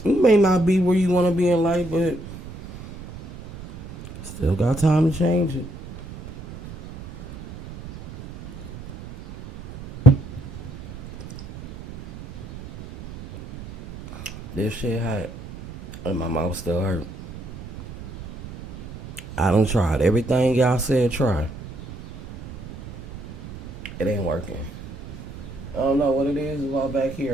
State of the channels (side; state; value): right; noise; rumble, 14 dB below the sound